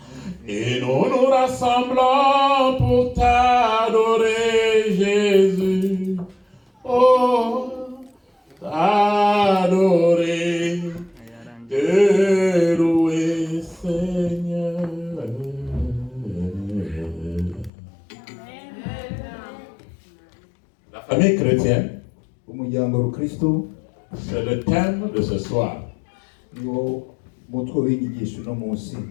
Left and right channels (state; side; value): drops out; right; at 17.7 s